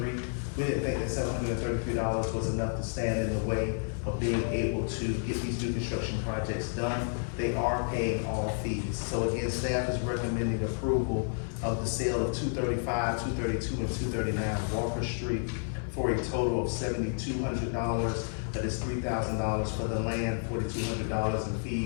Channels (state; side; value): silent; right; digital silence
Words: We didn't think that $733 was enough to stand in the way of being able to get these new construction projects done. They are paying all fees. So again, staff is recommending approval of the sale of 235, 232, and 239 Walker Street for a total of $7,200. That is $3,000 for the land, $4,200 in